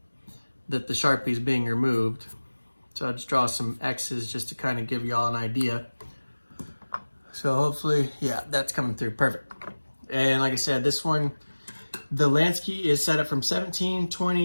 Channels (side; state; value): both; inverted; correlation -1.00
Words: that the Sharpie is being removed. So I'll just draw some X's just to kind of give y'all an idea. So hopefully, yeah, that's coming through, perfect. And like I said, this one, the Lansky is set up from 17,